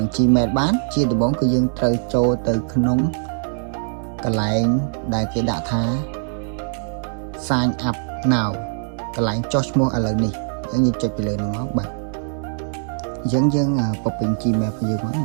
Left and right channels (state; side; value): silent; left; digital silence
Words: នឹង Gmail បានជាដំបូងគឺយើងត្រូវចូលទៅក្នុងកន្លែងដែលគេដាក់ថា sign up now កន្លែងចុះឈ្មោះឥឡូវនេះអញ្ចឹងយើងចុចទៅលើនោះមកបាទអញ្ចឹងយើងពពេញ Gmail របស់យើងមកអ